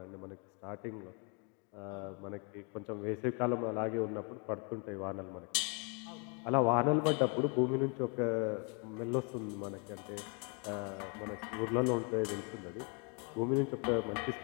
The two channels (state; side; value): quieter; right; 35.2 dB